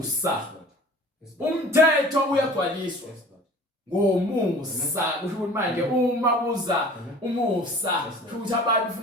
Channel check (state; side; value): normal; both; correlation 0.45